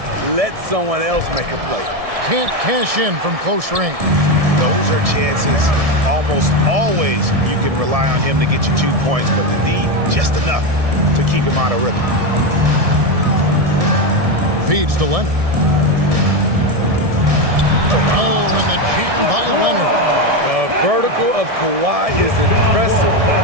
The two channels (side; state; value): left; late; 1.7 ms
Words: Let someone else make a play. Can't cash in from close range. Those are chances. Almost always you can rely on him to get you 2 points, but the D, just enough to keep him out of rhythm. Feeds to Leonard. Oh, and the jam by Leonard. The vertical of Kawhi is impressive.